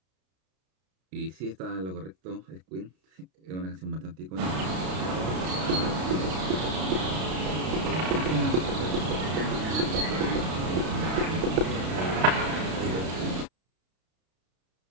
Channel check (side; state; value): left; late; 32 ms